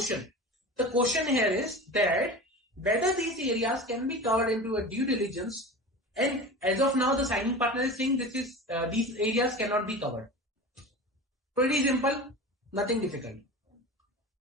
The question here is that whether these areas can be covered into a due diligence, and as of now the signing partner is saying these areas cannot be covered. Pretty simple, nothing difficult.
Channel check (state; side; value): normal; both; correlation 0.32